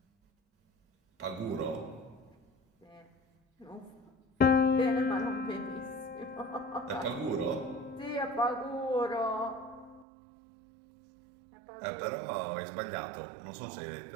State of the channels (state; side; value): drops out; left; at 10.1 s